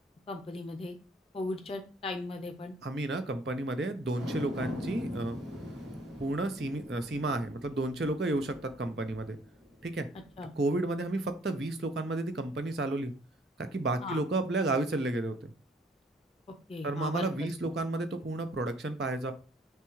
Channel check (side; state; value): both; normal; correlation 0.62